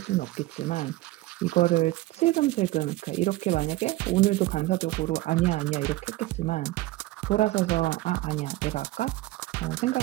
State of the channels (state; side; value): quieter; left; 17.9 dB